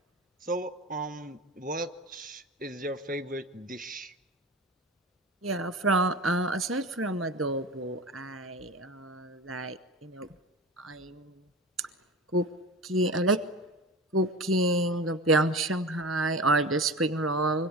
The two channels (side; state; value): both; normal; correlation 0.32